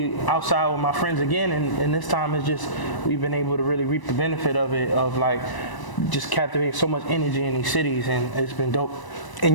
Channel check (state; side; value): late; right; 1.0 ms